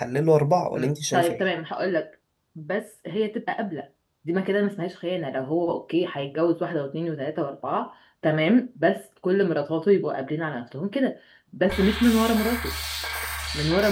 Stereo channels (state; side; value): identical; both; correlation 1.00